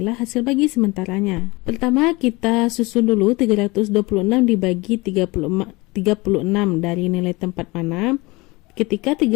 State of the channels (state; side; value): quieter; right; 23.6 dB